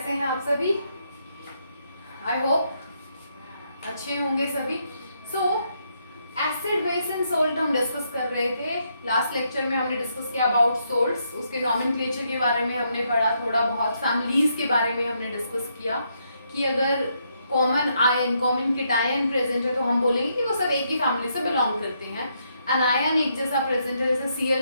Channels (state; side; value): inverted; both; correlation -0.77